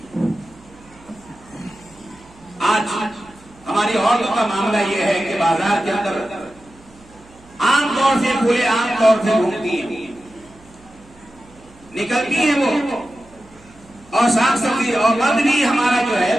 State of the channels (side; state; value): right; noise; hum, 26 dB below the sound